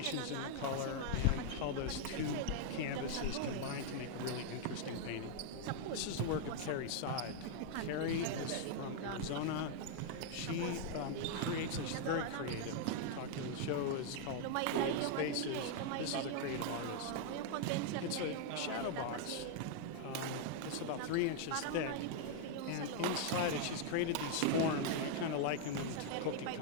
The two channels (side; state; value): both; different; correlation 0.00